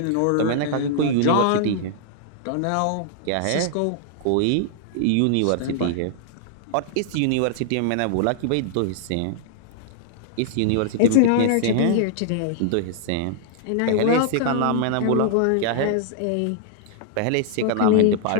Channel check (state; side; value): different; both; correlation -0.01